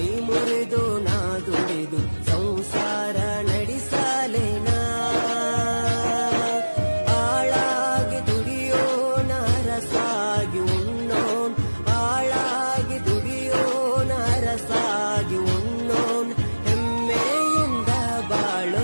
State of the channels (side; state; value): both; inverted; correlation -1.00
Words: ಮುರಿದು ನಾ ದುಡಿದು ಸಂಸಾರ ನಡೆಸಲೇನ ಆಳಾಗಿ ದುಡಿಯೋಣ ರಸಾಗಿ ಉಣ್ಣೋನ್ ಆಳಾಗಿ ದುಡಿಯೋಣ ರಸಾಗಿ ಉಣ್ಣೋನ್ ಹೆಮ್ಮೆಯಿಂದ